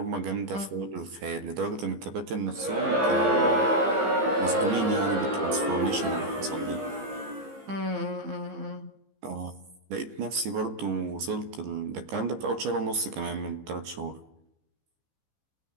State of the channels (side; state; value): left; late; 15 ms